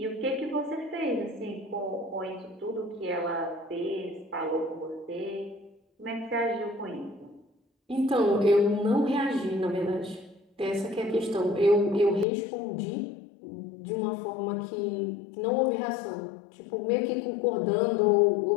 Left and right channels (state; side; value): drops out; right; at 12.2 s